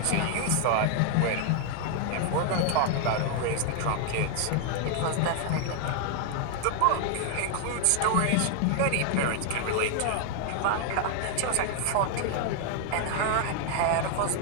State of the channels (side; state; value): both; different; correlation 0.00